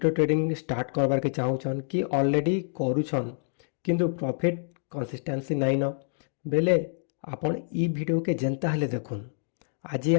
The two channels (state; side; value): silent; right; digital silence